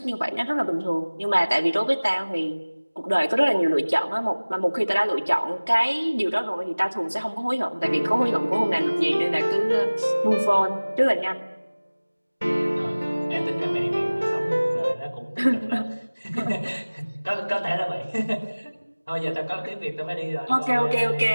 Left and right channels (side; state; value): both; inverted; correlation -1.00